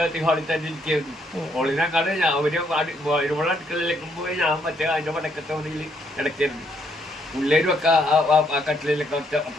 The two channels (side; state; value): both; normal; correlation 0.72